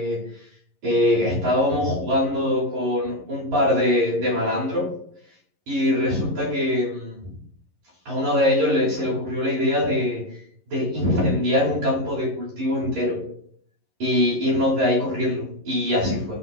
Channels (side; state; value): left; late; 11 ms